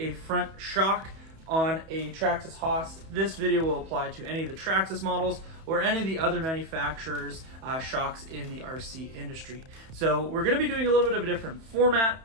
front shock on a Traxxas Haas. This video will apply to any of the Traxxas models or any of the other manufacturers' shocks in the RC industry. So we're going to be doing a little bit of a different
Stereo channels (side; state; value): left; late; 31 ms